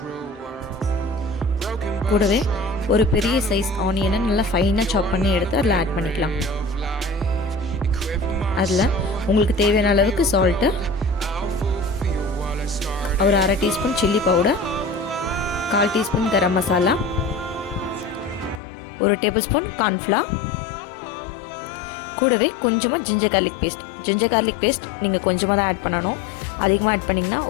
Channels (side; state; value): right; drops out; at 18.6 s